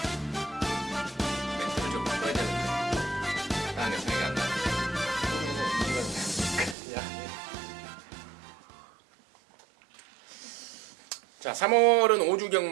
멘트를 좀 바꿔야 되는데 다른 생각이 안 나요. 자, 3월은 5주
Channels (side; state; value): left; drops out; at 6.8 s